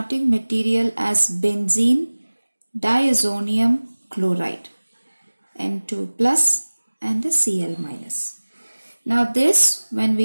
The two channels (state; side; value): inverted; both; correlation -1.00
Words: material as benzene diazonium chloride, N2 plus and the Cl minus. Now this, when